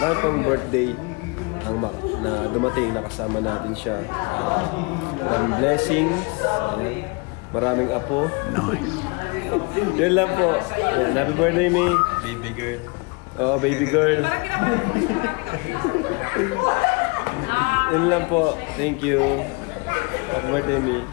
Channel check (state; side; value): quieter; right; 30.4 dB